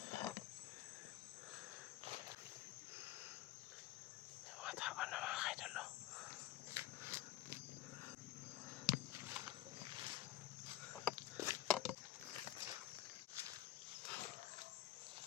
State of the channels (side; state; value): right; quieter; 14.0 dB